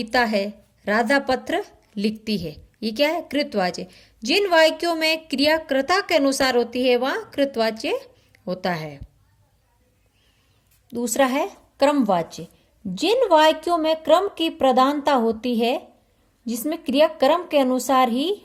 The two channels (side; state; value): both; identical; correlation 1.00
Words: है, राधा पत्र लिखती है। ये क्या है? कृतवाच्य। जिन वाक्यों में क्रिया कर्ता के अनुसार होती है वहां कृतवाच्य होता है। दूसरा है क्रमवाच्य, जिन वाक्यों में क्रम की प्रधानता होती है जिसमें क्रिया क्रम के अनुसार ही